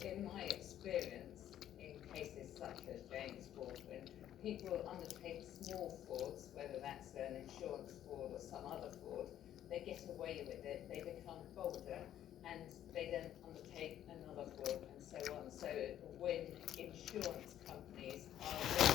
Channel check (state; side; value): quieter; right; 11.4 dB